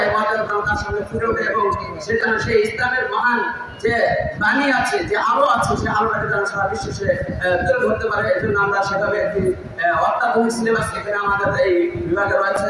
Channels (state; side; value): identical; both; correlation 1.00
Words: এই মর্যাদা তার সামনে ফুটে ওঠে এবং সে যেন সেই ইসলামের মহান যে বাণী আছে, যে আলো আছে, সেই আলোটাকে যেন সারা বিশ্বে সে তুলে ধরতে পারে। এই জন্য আমরা সেভাবে একটি অত্যাধুনিক সিলেবাস এখানে আমাদের এই বিভাগে রয়েছে।